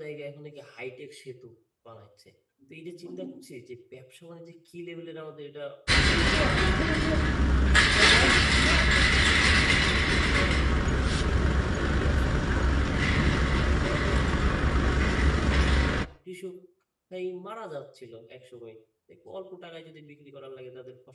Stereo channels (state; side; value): identical; both; correlation 1.00